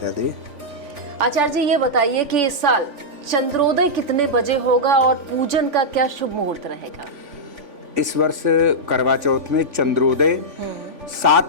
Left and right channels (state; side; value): late; left; 3.5 ms